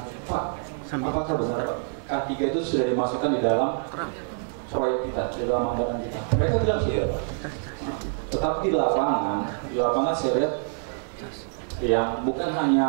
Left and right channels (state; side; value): silent; left; digital silence